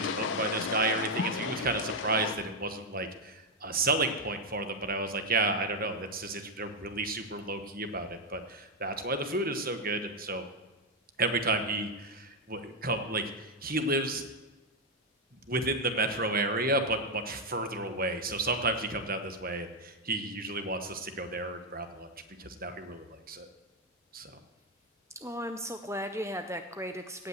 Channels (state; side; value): normal; both; correlation 0.03